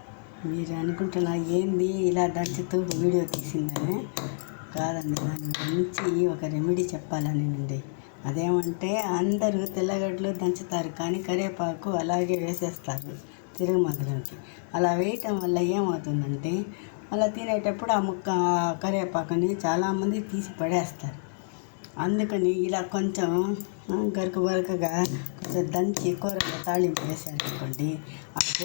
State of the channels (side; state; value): right; silent; digital silence